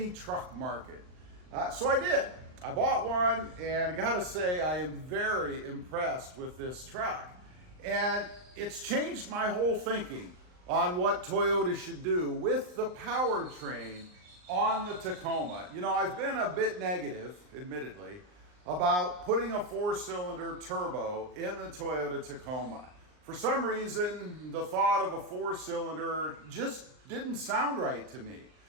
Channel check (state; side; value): late; left; 39 ms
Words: truck market. So I did. I bought one, and I gotta say, I am very impressed with this truck. And it's changed my whole thinking on what Toyota should do with the powertrain on the Tacoma. You know, I've been a bit negative, admittedly, about putting a 4-cylinder turbo in the Toyota Tacoma. For some reason, the thought of a 4-cylinder just didn't sound right to me.